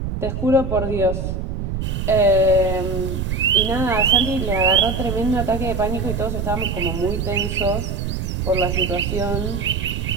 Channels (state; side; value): noise; right; rumble, 3 dB below the sound